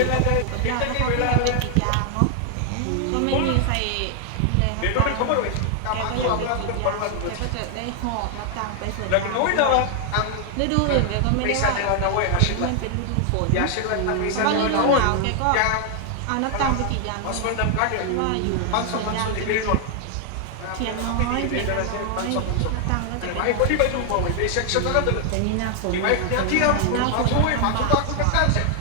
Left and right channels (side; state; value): both; different; correlation 0.00